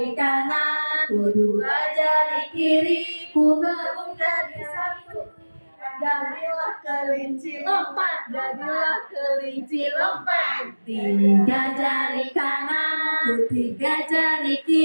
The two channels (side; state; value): both; inverted; correlation -1.00